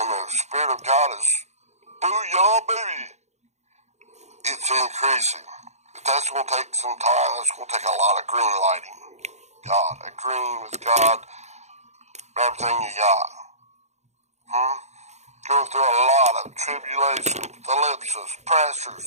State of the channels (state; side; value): late; left; 0.33 ms